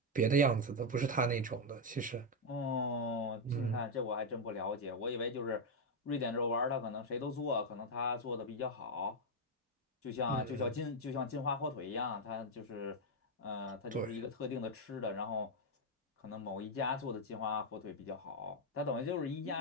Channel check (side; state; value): both; normal; correlation 0.02